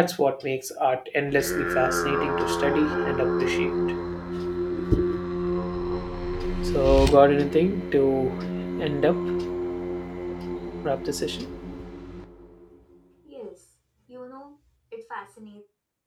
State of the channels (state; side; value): identical; both; correlation 1.00